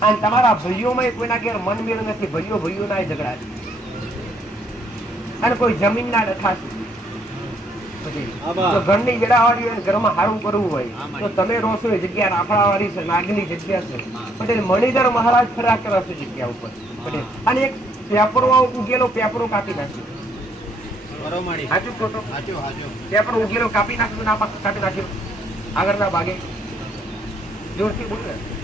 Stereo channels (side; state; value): both; normal; correlation 0.68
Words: અને તમારા ભાઈઓમાં કોઈના ઘેર મનમેળ નથી, ભાઈઓ ના ઝઘડા છે અને કોઈ જમીન ના ડખા છે. ઘરની વેડાવાળી હોય, ઘરમાં સારું કરવું હોય તો તમે રોશો એ જગ્યા રાફડાવાળી છે, નાગની જગ્યા છે. પટેલ મણિધર મહારાજ ફર્યા કરે છે જગ્યા ઉપર. પટેલ અને એક પેપરો ઉગેલો પેપરો કાપી નાખ્યો. સાચું ખોટું? ત્યાં પણ ઉગેલો કાપી નાખ્યું, ના કાપી નાખ્યું આગળના ભાગે? જોરથી બોલ ને.